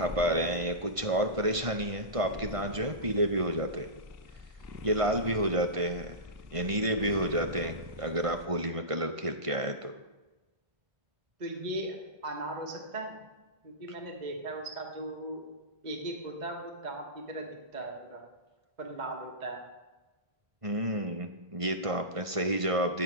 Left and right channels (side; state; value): left; late; 1.5 ms